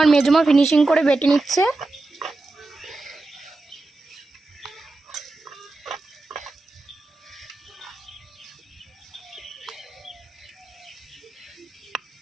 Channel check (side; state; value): left; quieter; 3.1 dB